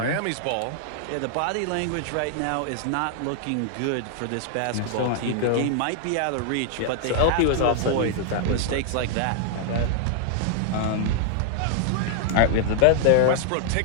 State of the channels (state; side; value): different; both; correlation -0.01